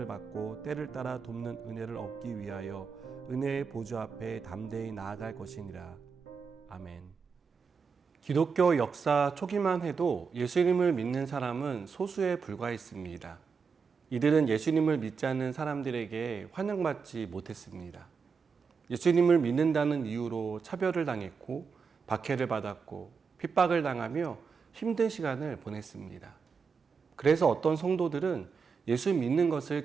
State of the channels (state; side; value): quieter; left; 5.5 dB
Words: 받고 때를 따라 돕는 은혜를 얻기 위하여 은혜의 보좌 앞에 담대히 나아갈 것이니라. 아멘. 기독교 역사 초기만 해도 예수님을 믿는 사람은 소수에 불과했습니다. 이들은 예수님을 믿지 않는 사람들에게 환영받지 못했습니다. 예수님을 믿는다는 이유로 차별을 당했고 박해를 받았고 핍박을 당하며 힘든 시간을 보냈습니다. 그래서 어떤 성도들은 예수 믿는 것을